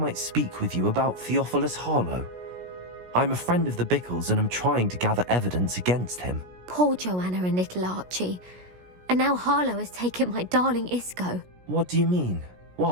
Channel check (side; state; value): left; late; 17 ms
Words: speak with you about Theophilus Harlow. I'm a friend of the Bickles and I'm trying to gather evidence against him. Poor Joanna and little Archie. And now Harlow has taken my darling Isco. What do you mean?